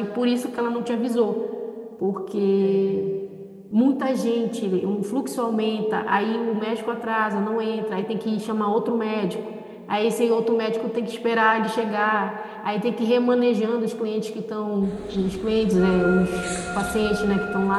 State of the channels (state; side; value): identical; both; correlation 1.00